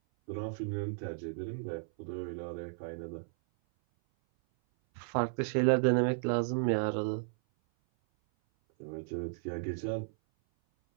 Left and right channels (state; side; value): silent; left; 55 dB below the other